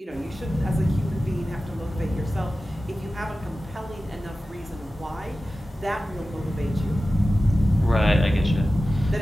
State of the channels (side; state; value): both; normal; correlation 0.95